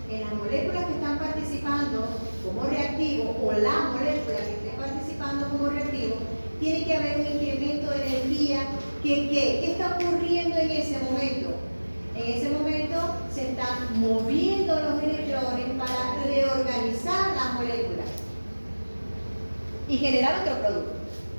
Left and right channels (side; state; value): both; inverted; correlation -1.00